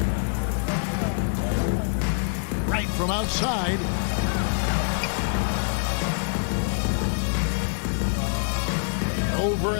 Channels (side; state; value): right; silent; digital silence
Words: Right from outside. Over